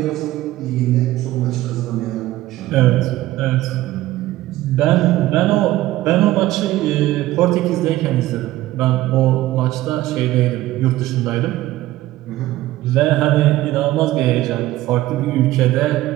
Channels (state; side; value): quieter; left; 16.0 dB